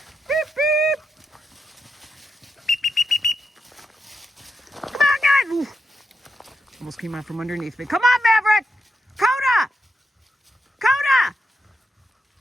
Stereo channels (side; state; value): both; normal; correlation 0.84